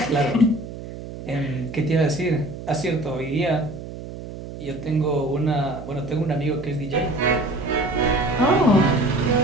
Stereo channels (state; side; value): noise; right; hum, 11 dB below the sound